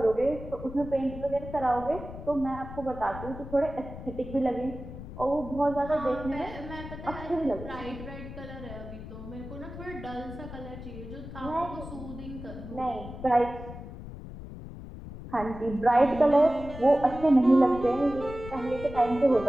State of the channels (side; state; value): left; noise; rumble, 12 dB below the sound